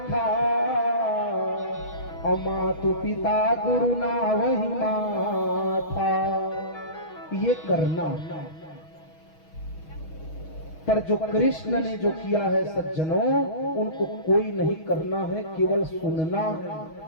मातु पिता गुरु ना वही माथा। ये करना। पर जो कृष्ण ने जो किया है सज्जनों, उनको कोई नहीं करना है, केवल सुनना।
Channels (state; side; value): late; right; 6.3 ms